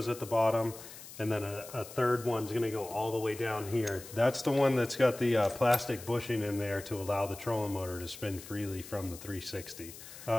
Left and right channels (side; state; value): left; noise; hiss, 15 dB below the sound